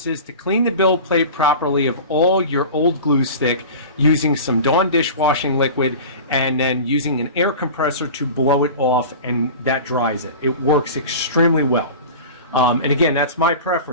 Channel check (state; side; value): inverted; both; correlation -0.35